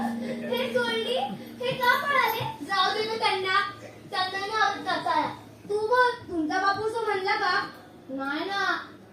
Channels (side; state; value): both; identical; correlation 1.00